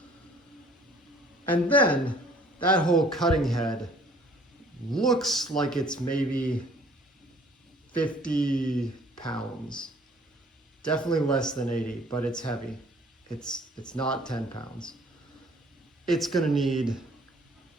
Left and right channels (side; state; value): both; normal; correlation 0.56